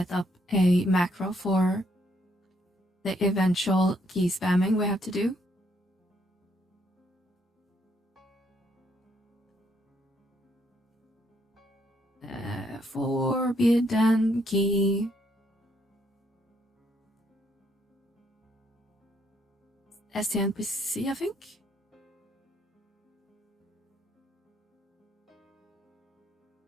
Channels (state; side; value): normal; both; correlation 0.72